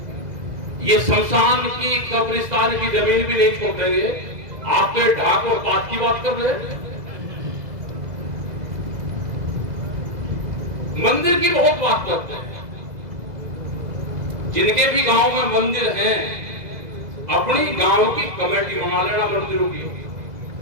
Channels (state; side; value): late; left; 2.0 ms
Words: ये शमशान की कब्रिस्तान की जमीन भी नहीं छोड़ देंगे। आप तो ढाक और पात की बात कर रहे हैं। मंदिर की बहुत बात करते हैं। जिनके भी गांव में मंदिर हैं, अपनी गांव की कमेटी बना लेना मंदिरों की।